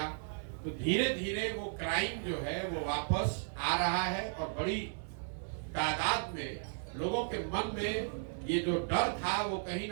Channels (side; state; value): left; silent; 54 dB below the other